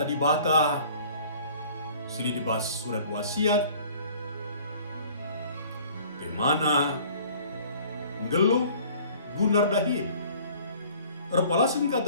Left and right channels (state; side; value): inverted; both; correlation -0.51